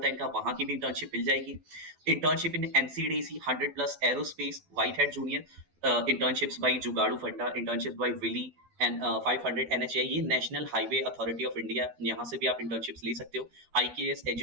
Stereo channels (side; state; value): left; late; 12 ms